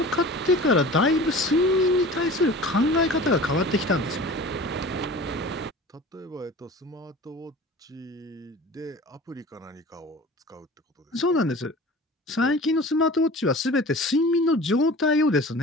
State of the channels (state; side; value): normal; both; correlation 0.40